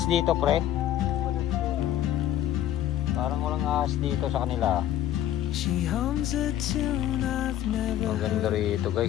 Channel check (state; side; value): quieter; right; 11.9 dB